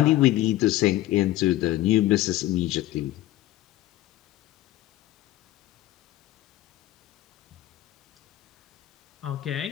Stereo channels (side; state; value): right; quieter; 15.4 dB